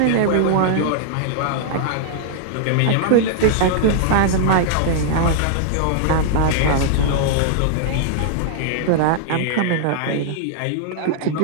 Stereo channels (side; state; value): both; different; correlation -0.01